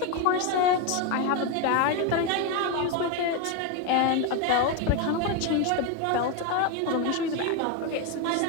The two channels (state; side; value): different; both; correlation 0.02